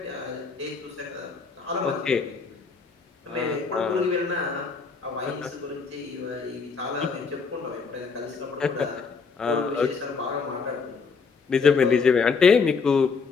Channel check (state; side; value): quieter; right; 5.1 dB